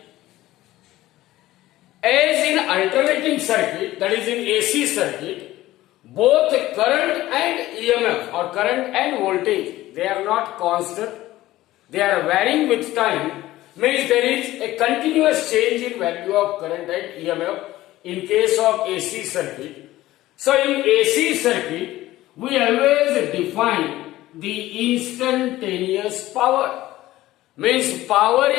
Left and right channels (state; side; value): quieter; right; 16.1 dB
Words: As in alternating circuit, that is in AC circuit, both current and EMF or current and voltage, they are not constant, they are varying with time, means there is a continuous change in value of current and EMF in case of AC circuit. So in AC circuit, we always define the instantaneous power. Means power